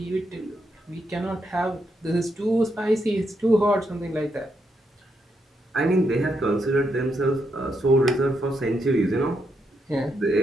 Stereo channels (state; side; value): normal; both; correlation 0.80